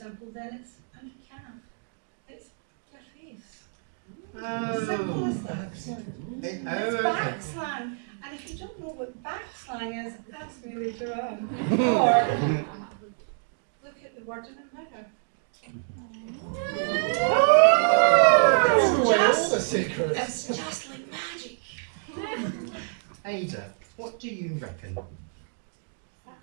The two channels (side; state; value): left; silent; 60 dB below the other